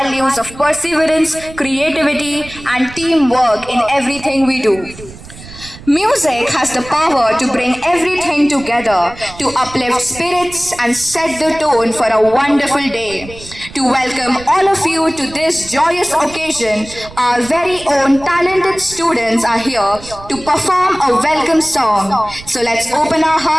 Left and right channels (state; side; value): noise; right; rumble, 17 dB below the sound